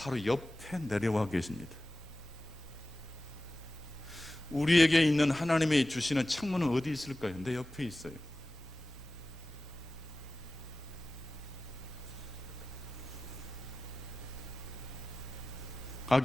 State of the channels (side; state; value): both; normal; correlation 0.96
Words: 옆에 내려와 계십니다. 우리에게 있는 하나님이 주시는 창문은 어디 있을까요? 내 옆에 있어요.